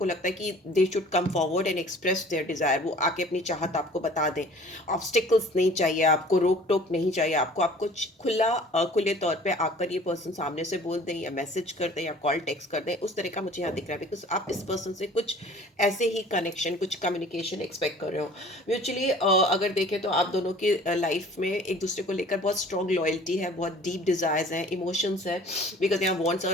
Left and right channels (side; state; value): both; normal; correlation 0.49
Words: लगता है कि they should come forward and express their Dzire, वो आके अपनी चाहत आपको बता दें। ऑब्स्टिकल्स नहीं चाहिए आपको, रोक टोक नहीं चाहिए आपको, आपको खुले तौर पे आकर ये पर्सन सामने से बोल दें या मैसेज कर दें या कॉल टेक्स्ट कर दें, उस तरह का मुझे यहाँ दिख रहा है। बिकॉज आप इस पर्सन से कुछ ऐसे ही कनेक्शन, कुछ कम्युनिकेशन एक्सपेक्ट कर रहे हो म्यूचुअली। अगर देखें तो आप दोनों की लाइफ में एक दूसरे को लेकर बहुत स्ट्रॉन्ग लॉयल्टी है, बहुत डीप डिजायर्स हैं, इमोशंस है। बिकॉज यहाँ वॉन्ट्स